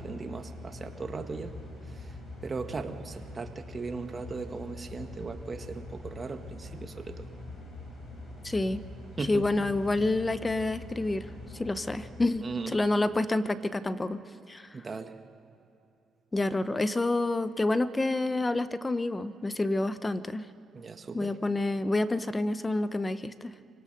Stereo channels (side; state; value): both; normal; correlation 0.94